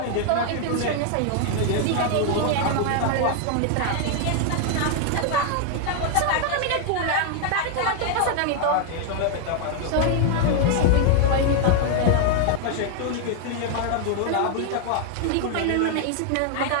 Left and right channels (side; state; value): both; different; correlation 0.00